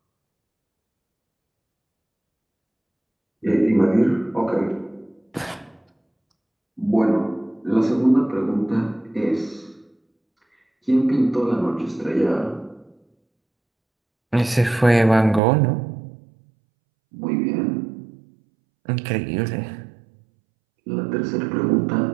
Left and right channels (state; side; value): drops out; left; at 15.4 s